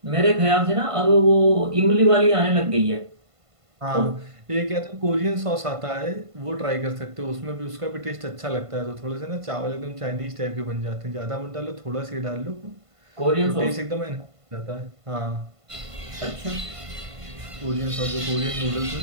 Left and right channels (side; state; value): left; late; 1.5 ms